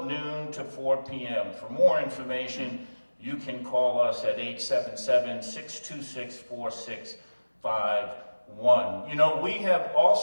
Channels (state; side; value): inverted; both; correlation -1.00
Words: noon to 4 p.m. For more information, you can call us at 877-626-4651. You know, we have